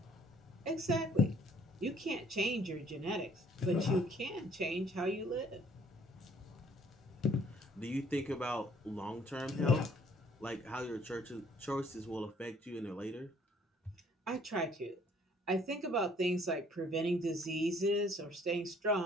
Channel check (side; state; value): both; normal; correlation 0.61